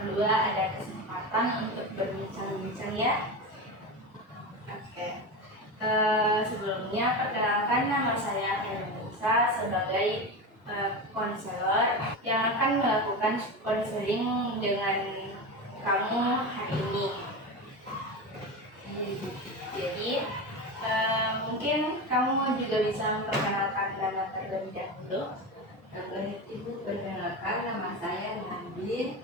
ada kesempatan untuk berbincang-bincang ya. Oke. Sebelumnya perkenalkan, nama saya Hermanisa sebagai konselor yang akan melakukan konseling dengan kamu hari ini. Jadi mungkin kamu juga bisa memperkenalkan nama terlebih dahulu. Baik Ibu, perkenalkan nama saya Nadine.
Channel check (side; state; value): both; normal; correlation 0.22